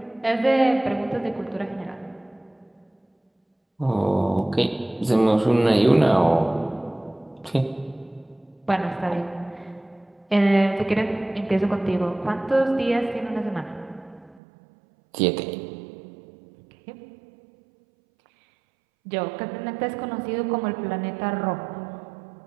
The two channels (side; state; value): left; drops out; at 14.4 s